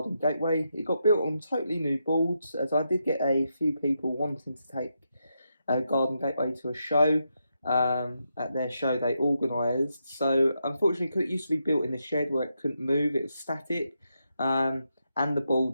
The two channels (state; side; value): inverted; both; correlation -0.83